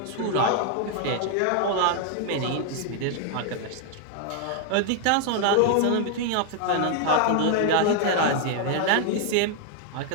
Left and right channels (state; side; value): different; both; correlation 0.00